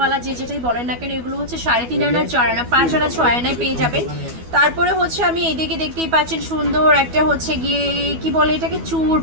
যে যেটাই বলেন না কেন, এগুলো 3.5 আনা 4 আনা 5 আনা 6 আনায় পেয়ে যাবেন। তারপরে আমি এইদিকে দেখতেই পাচ্ছেন সুন্দর একটা গিয়ে কি বলে এটাকে, চূড়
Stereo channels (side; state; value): left; late; 12 ms